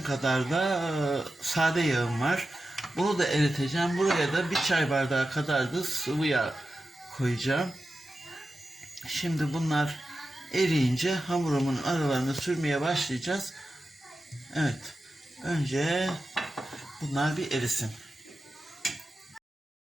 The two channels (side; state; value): both; normal; correlation 0.92